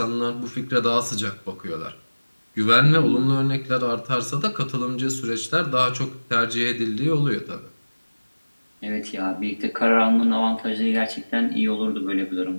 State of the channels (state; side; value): inverted; both; correlation -1.00